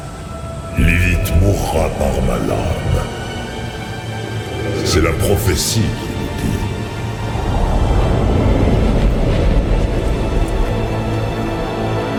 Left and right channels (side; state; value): both; identical; correlation 1.00